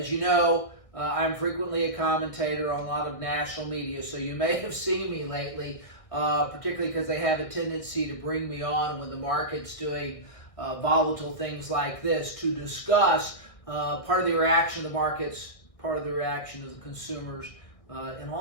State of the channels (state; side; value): late; right; 1.6 ms